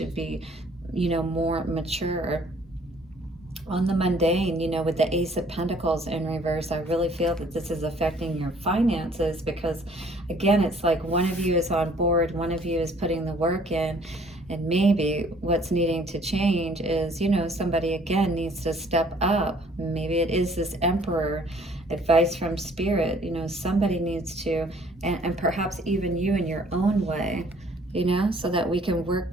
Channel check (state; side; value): normal; both; correlation 0.58